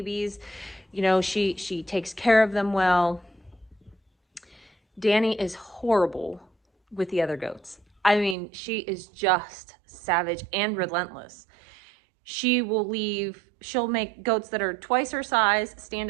She takes care of them well. Danny is horrible with the other goats. I mean, she is just savage and relentless. She'll make goats that are twice her size stand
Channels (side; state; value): left; drops out; at 8.3 s